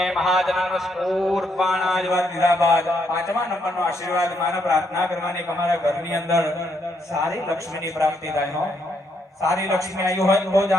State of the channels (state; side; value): normal; both; correlation 0.75